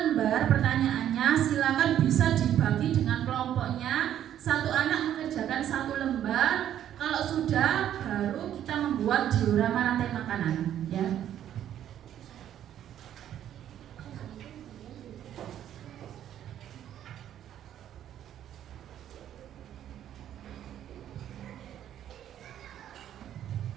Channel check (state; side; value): quieter; left; 10.8 dB